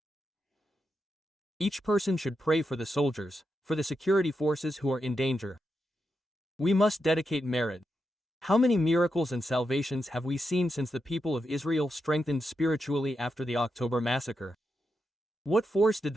Each person should pray for the soldiers, for the security forces who are in danger. We must dedicate merit. How many miracles and salvations have we seen since the people of Israel strengthened spiritually after the October massacre? What force did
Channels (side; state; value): both; normal; correlation 0.86